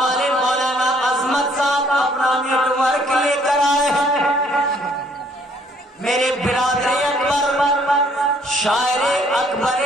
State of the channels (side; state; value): both; normal; correlation 0.63